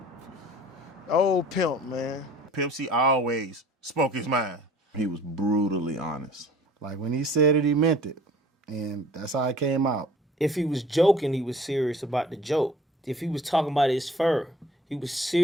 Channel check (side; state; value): both; normal; correlation 0.50